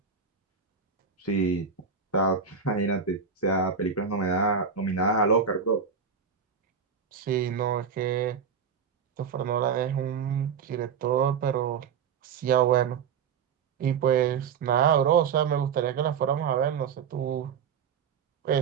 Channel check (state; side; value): quieter; left; 6.5 dB